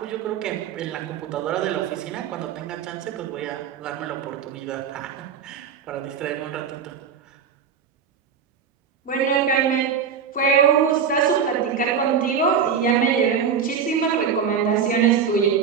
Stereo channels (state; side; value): quieter; left; 6.9 dB